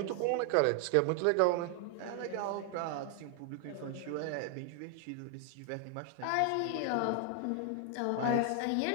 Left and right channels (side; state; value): both; different; correlation 0.00